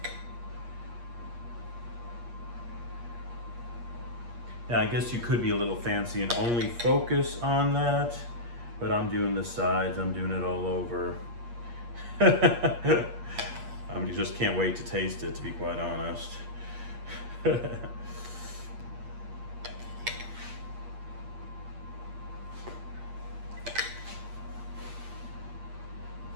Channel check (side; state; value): left; late; 8.5 ms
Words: Now I guess you could be a little fancy and only focus on that, but I'm doing the sides, I'm doing it all over. You just can't wait to taste it, to be quite honest. A